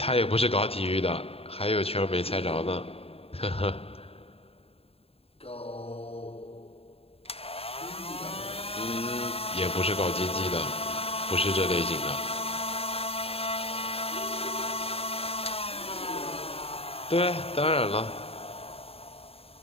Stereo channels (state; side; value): late; right; 0.28 ms